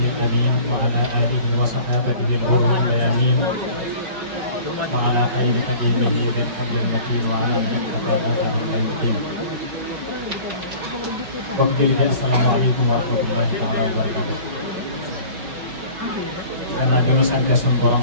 الأمين وعلى آله وصحابته الغر الميامين وعلى خير خديمه بالحبل المتين وعلى من اكتفى أثرهم إلى يوم الدين. السلام عليكم ورحمة الله تعالى وبركاته. Karena dulu santai Borom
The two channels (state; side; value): late; left; 6.2 ms